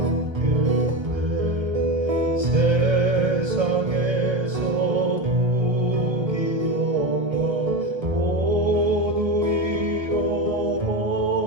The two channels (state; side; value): late; left; 1.3 ms